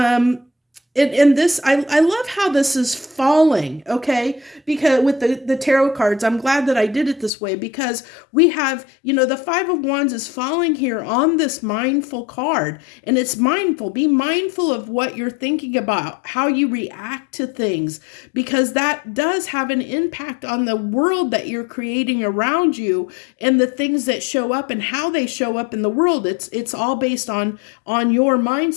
And this, I love how this is falling, okay? Because with the tarot cards, I'm glad that I did it this way, because we have, the 5 of Wands is falling here on this mindful card. And it's mindful. Be mindful of what you're thinking about, how you react to things, because that does have an impact on the world that you're creating around you, and the things that show up and how they show up in the world. It's all based on your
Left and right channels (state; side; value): drops out; right; at 7.3 s